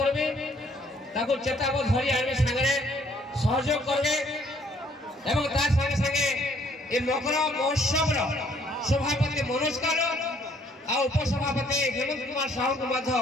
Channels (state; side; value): normal; both; correlation 0.63